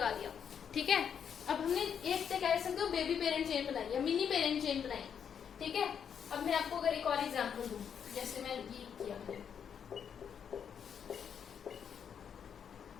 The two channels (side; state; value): right; quieter; 7.8 dB